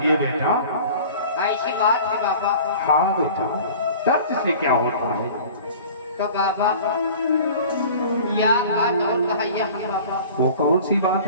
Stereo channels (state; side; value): inverted; both; correlation -0.43